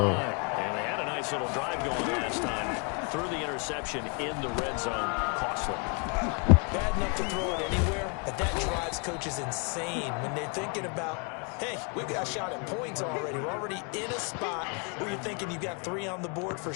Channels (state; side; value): quieter; right; 34.7 dB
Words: And they had a nice little drive going last time. Threw the interception in the red zone. Costly. Bad enough to throw it anywhere, but that drives coaches insane when they're thinking about, hey, we've got a shot at points already. We're already in a spot where you're thinking you've got 3 on the board for